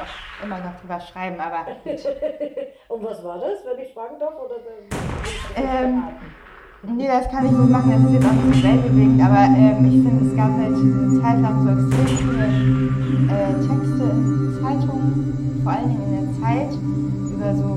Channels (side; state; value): both; identical; correlation 1.00